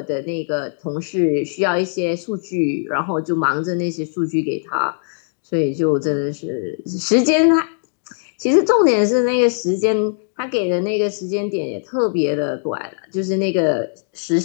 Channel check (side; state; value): right; silent; 66 dB below the other